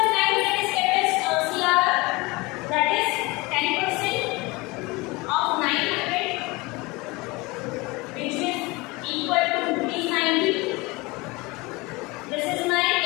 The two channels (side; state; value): right; quieter; 23.9 dB